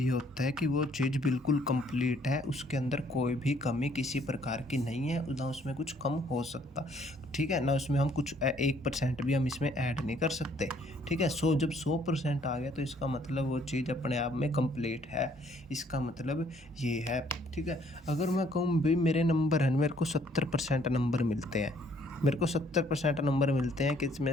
होता है कि वो चीज़ बिल्कुल कंप्लीट है, उसके अंदर कोई भी कमी किसी प्रकार की नहीं है, ना उसमें कुछ कम हो सकता। ठीक है, ना उसमें हम कुछ 1% भी हम इसमें ऐड नहीं कर सकते। ठीक है, जब 100% आ गया तो इसका मतलब वो चीज़ अपने आप में कंप्लीट है। इसका मतलब ये है। ठीक है, अगर मैं कहूँ भाई मेरे नंबर हैं, मेरे को 70% नंबर मिलते हैं, मेरे को 70% नंबर मिलते हैं किस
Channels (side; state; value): both; normal; correlation 0.63